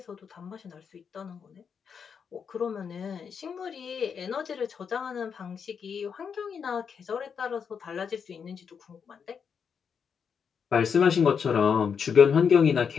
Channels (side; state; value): right; quieter; 6.7 dB